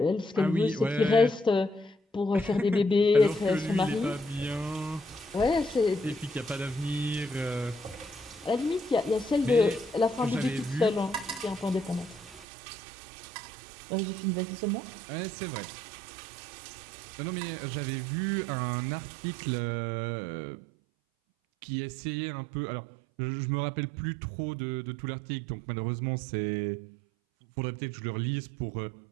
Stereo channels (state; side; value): drops out; left; at 12.5 s